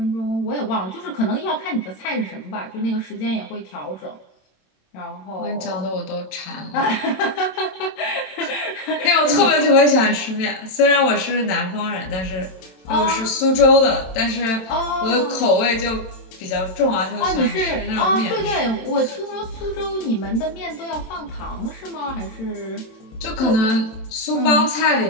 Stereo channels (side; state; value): right; late; 27 ms